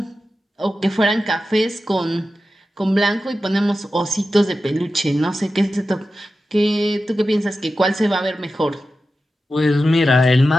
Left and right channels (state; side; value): normal; both; correlation 0.92